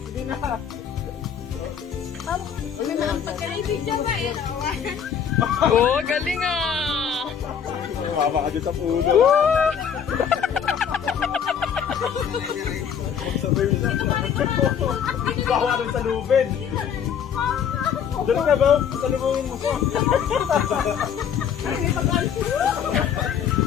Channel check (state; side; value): quieter; right; 8.0 dB